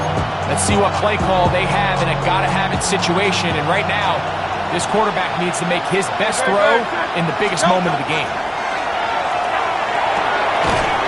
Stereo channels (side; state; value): both; identical; correlation 1.00